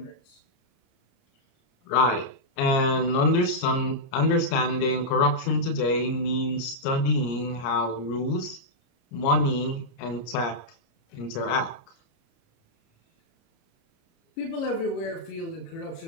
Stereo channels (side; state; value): right; late; 30 ms